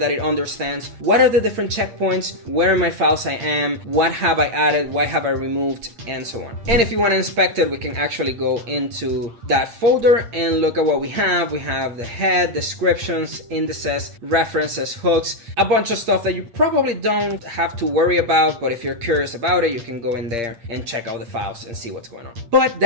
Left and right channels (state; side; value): late; left; 8.6 ms